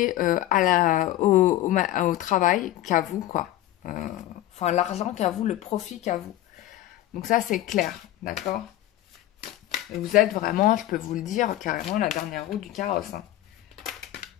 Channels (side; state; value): right; quieter; 14.5 dB